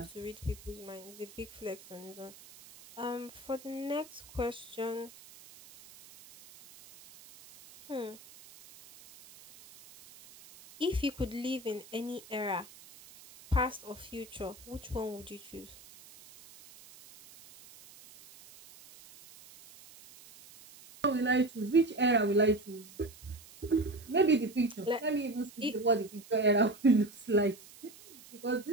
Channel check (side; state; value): right; noise; hiss, 20 dB below the sound